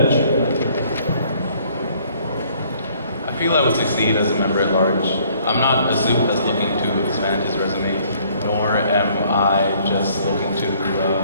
I feel I would succeed as a member at large. I'm not a suit that's looking to expand his resume, nor am I just looking to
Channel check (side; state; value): both; inverted; correlation -0.61